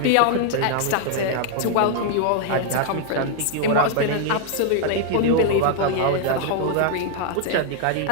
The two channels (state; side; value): different; both; correlation 0.00